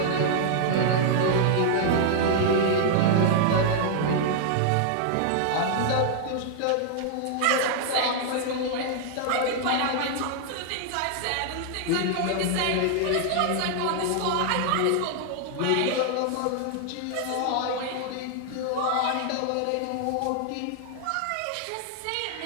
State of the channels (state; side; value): different; both; correlation -0.01